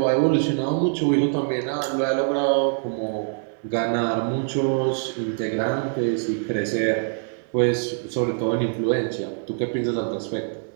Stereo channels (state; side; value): silent; left; digital silence